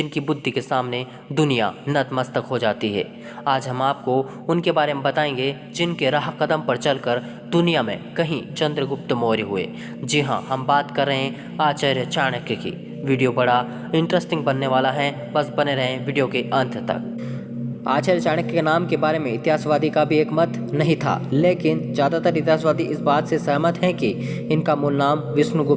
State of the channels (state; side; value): identical; both; correlation 1.00